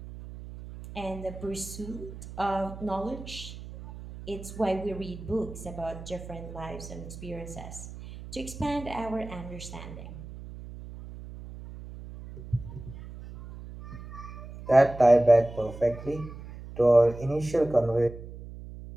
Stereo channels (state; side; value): noise; right; hum, 13 dB below the sound